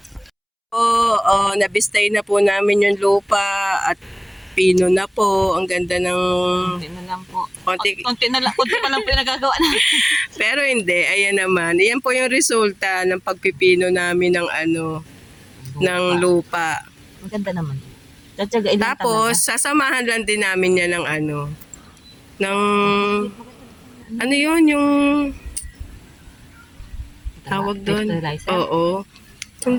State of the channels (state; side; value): identical; both; correlation 1.00